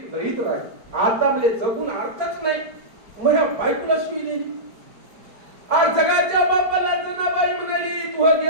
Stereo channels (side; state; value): left; late; 4.8 ms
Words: लईत राग. आता म्हणजे जगून अर्थच नाही, माझ्या बायकोला शिवी दिली. आज जगाच्या बापाला जनाबाई म्हणाली, तू